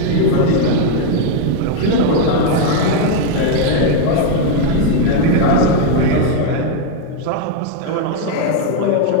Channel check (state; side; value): different; both; correlation 0.01